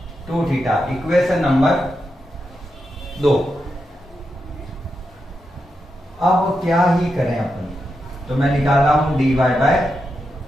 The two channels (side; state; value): both; normal; correlation 0.86